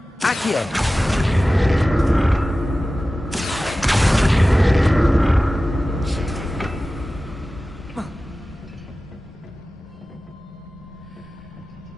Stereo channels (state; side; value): normal; both; correlation 0.96